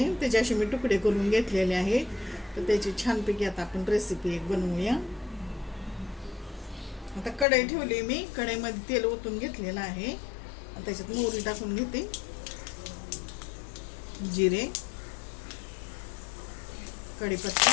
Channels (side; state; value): right; drops out; at 7.5 s